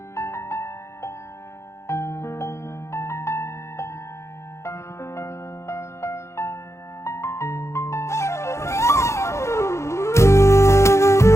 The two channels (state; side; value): late; right; 0.14 ms